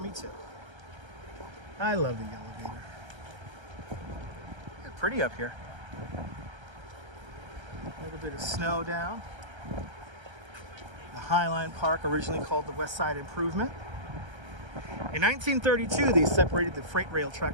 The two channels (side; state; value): left; late; 1.3 ms